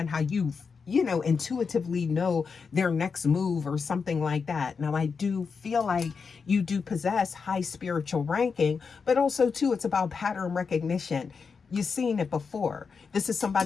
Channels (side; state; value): right; quieter; 5.4 dB